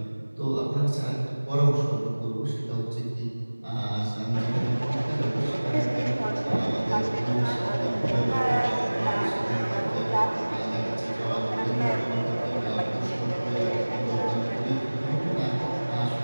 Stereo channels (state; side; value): inverted; both; correlation -1.00